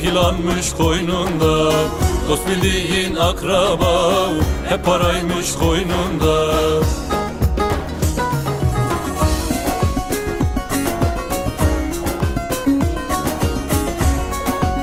yılanmış koynunda. Dost bildiğin akraba, hep paraymış koynunda.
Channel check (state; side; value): identical; both; correlation 1.00